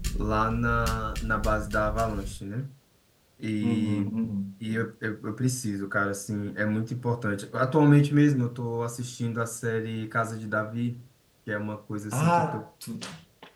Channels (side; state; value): both; identical; correlation 1.00